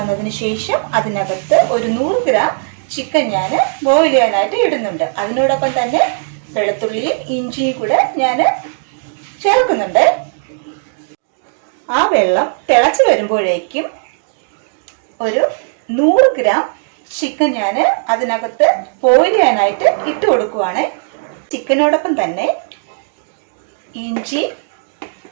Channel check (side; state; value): left; silent; digital silence